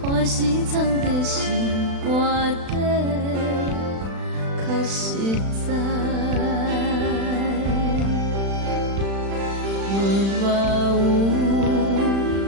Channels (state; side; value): late; left; 36 ms